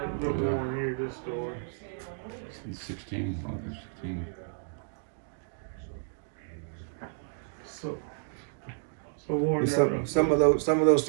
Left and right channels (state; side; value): silent; left; digital silence